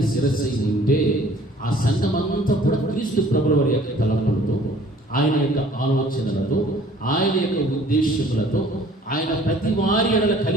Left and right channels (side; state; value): both; normal; correlation 0.53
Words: శిరస్సు అయి ఉంటే ఆ సంఘం అంతా కూడా క్రీస్తు ప్రభుల వారి యొక్క తలంపులతో, ఆయన యొక్క ఆలోచనలతో, ఆయన యొక్క ఉద్దేశములతో, ఆయన ప్రతి వారి ఎడల